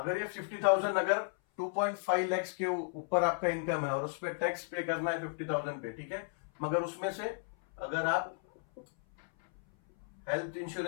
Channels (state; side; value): silent; right; 55 dB below the other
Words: ये 50,000, अगर 2.5 लाख के ऊपर आपका इनकम है और उस पर टैक्स पे करना है 50,000 पे, ठीक है, मगर उसमें से अगर आप हेल्थ